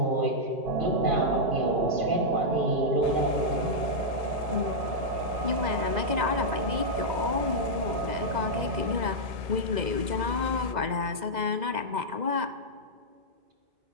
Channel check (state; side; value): late; left; 2.0 ms